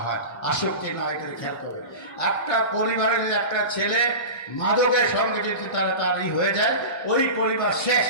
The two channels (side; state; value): right; late; 1.1 ms